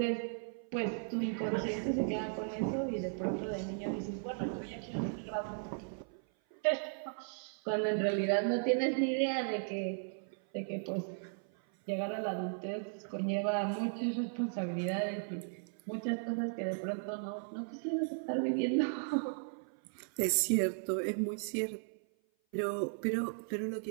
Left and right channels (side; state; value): left; silent; 54 dB below the other